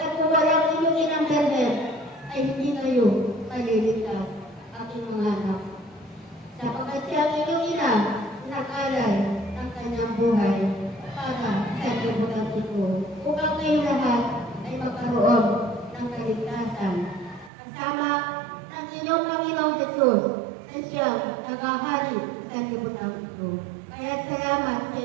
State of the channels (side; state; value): left; drops out; at 17.5 s